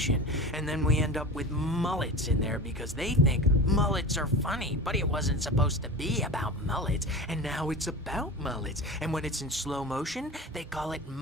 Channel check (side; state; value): both; normal; correlation 0.31